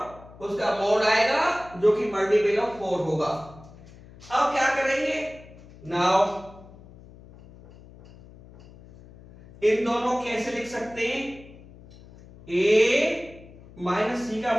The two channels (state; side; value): noise; left; hum, 21 dB below the sound